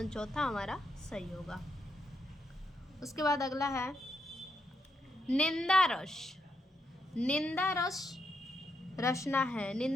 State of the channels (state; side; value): normal; both; correlation 0.80